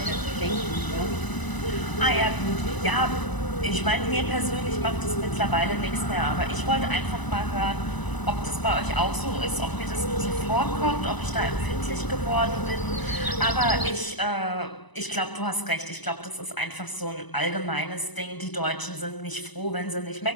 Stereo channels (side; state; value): right; late; 1.0 ms